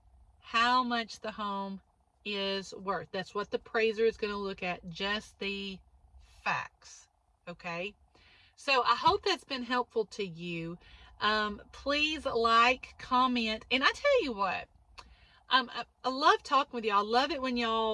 how much the home is worth. That's what the appraiser is going to look at, just the facts. Okay? So I hope that's been helpful to you. Please like, comment, and I tell you what, I love talking with y'all. I love it when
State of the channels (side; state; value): both; identical; correlation 1.00